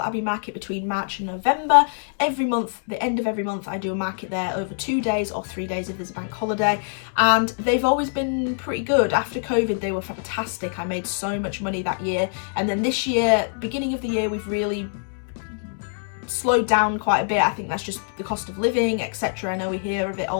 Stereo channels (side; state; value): right; silent; digital silence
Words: Abbey market between March and November. Every month, the end of every month, I do a market there over 2 days or 3 days if there's a bank holiday. And they've always been pretty good. After COVID, they were fantastic. I made so much money that year. And then this year, beginning of the year, we've really slowed down quite a bit. I think that's just the cost of living, etc. I know we hear of it